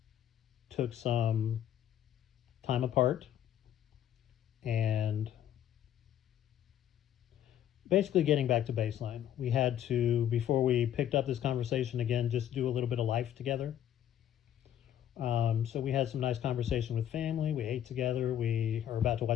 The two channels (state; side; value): quieter; right; 10.6 dB